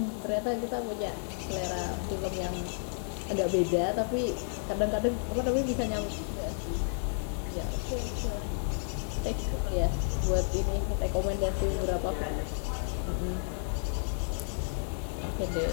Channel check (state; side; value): silent; right; digital silence